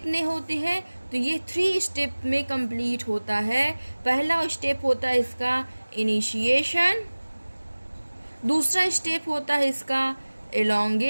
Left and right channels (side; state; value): both; inverted; correlation -1.00